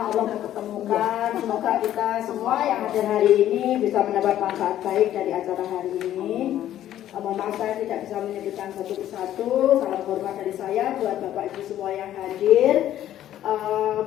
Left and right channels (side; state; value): right; quieter; 12.1 dB